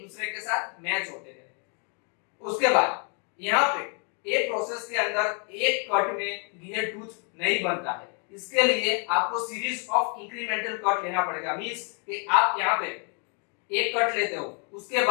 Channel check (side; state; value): right; quieter; 38.6 dB